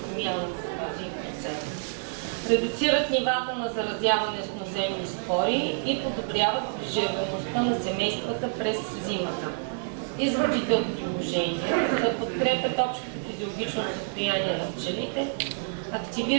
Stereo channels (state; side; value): silent; left; 57 dB below the other